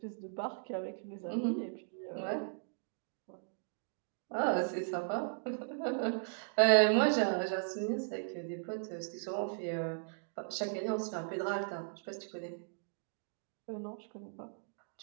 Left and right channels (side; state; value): left; silent; digital silence